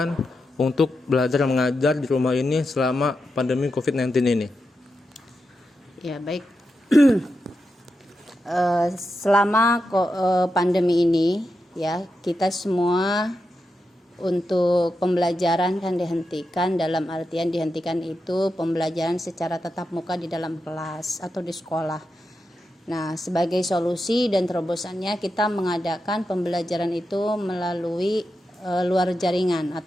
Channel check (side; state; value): both; normal; correlation 0.88